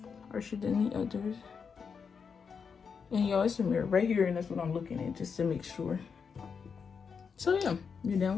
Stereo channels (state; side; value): quieter; right; 6.0 dB